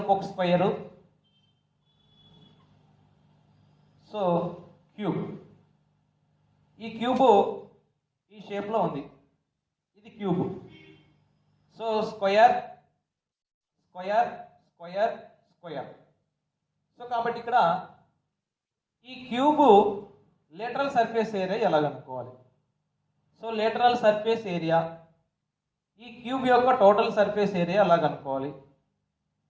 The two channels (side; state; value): both; identical; correlation 1.00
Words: స్క్వేరు. సో క్యూబ్, ఈ క్యూబ్ ఈ షేప్లో ఉంది, ఇది cube. So square square square square. So కాబట్టి ఇక్కడ ఈ క్యూబ్ లేటరల్ సర్ఫేస్ ఏరియా ఎలా కనుక్కోవాలి? సో లేటరల్ సర్ఫేస్ ఏరియా, ఈ క్యూబ్ యొక్క టోటల్ సర్ఫేస్ ఏరియా ఎలా కనుక్కోవాలి?